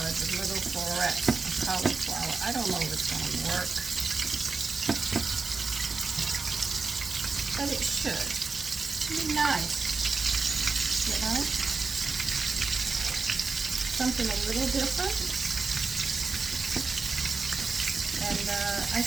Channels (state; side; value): quieter; left; 4.4 dB